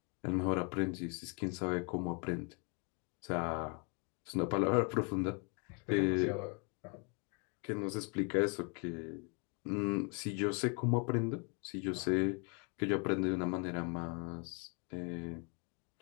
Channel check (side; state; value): right; quieter; 36.2 dB